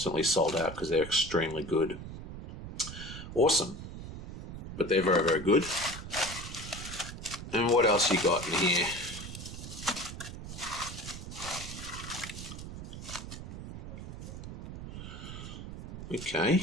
sold out because they're extremely good. Awesome. But they're very, very good. And what else you got in here?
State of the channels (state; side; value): noise; right; rumble, 10 dB below the sound